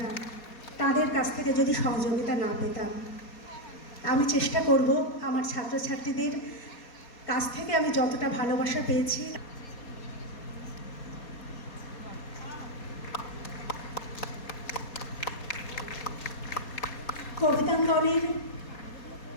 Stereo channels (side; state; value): right; late; 4.2 ms